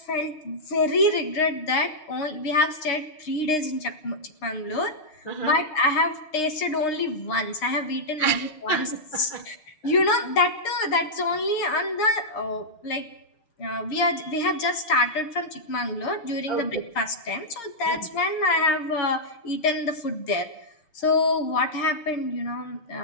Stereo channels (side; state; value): right; late; 6.5 ms